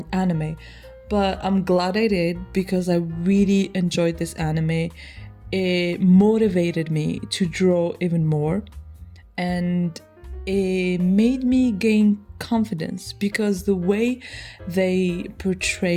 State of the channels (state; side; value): identical; both; correlation 1.00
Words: anime. But I'm glad I did because I really enjoyed this anime. It motivated me to draw even more, and it made me gain confidence because the way they